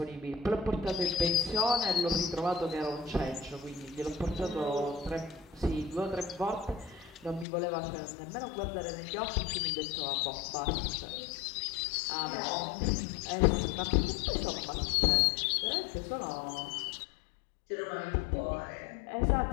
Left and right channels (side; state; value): right; drops out; at 7.5 s